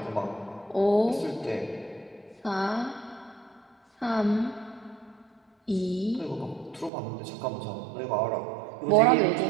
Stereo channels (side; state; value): left; drops out; at 6.9 s